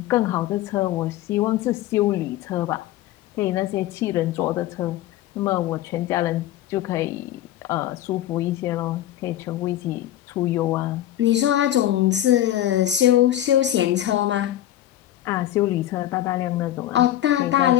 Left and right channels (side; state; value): right; quieter; 13.3 dB